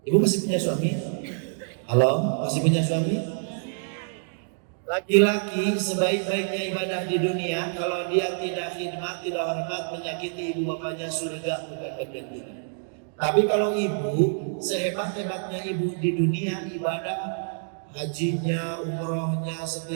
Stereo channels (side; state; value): left; silent; digital silence